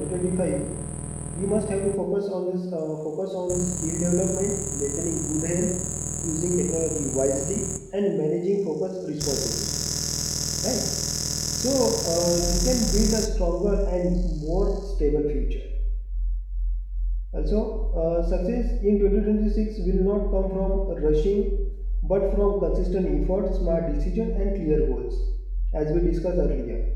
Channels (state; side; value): identical; both; correlation 1.00